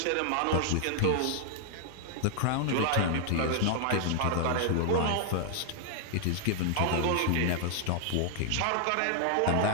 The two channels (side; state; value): both; different; correlation 0.00